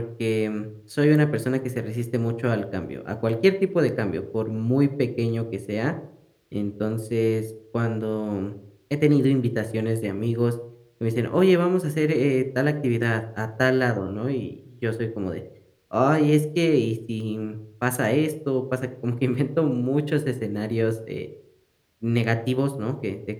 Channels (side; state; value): both; identical; correlation 1.00